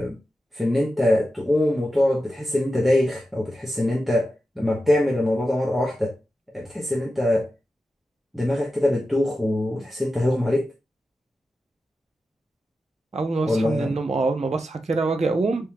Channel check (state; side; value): normal; both; correlation 0.91